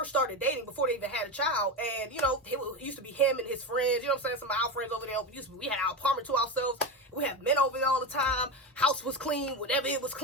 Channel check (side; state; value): both; normal; correlation 0.18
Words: started dating before they even had a child, and, you know, it used to be him and his friends, you know what I'm saying, some of our friends over there, we had our apartment to ourselves, we had men over there all the time, house was clean, whenever it was